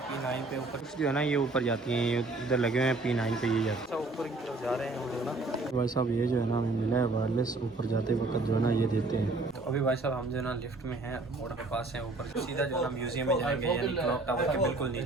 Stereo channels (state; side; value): quieter; left; 3.2 dB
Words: P9 पे, ऊपर जो है ना ये ऊपर जाती हैं, ये इधर लगे हुए हैं P9 पे, ये जाते हैं ऊपर की तरफ जा रहे हैं हम लोग ना। भाई साहब ये जो है ना हमें मिला है वायरलेस, ऊपर जाते वक्त जो है ना ये देते हैं। तो अभी भाई साहब हम जो है ना लिफ्ट में हैं, मोड़ के पास हैं, ऊपर सीधा जो है ना म्यूजियम में जाएंगे, यानी क्लॉक टावर के बिल्कुल